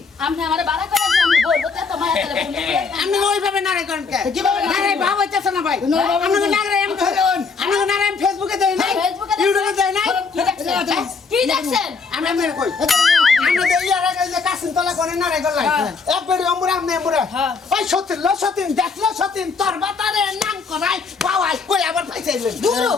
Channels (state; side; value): quieter; right; 4.9 dB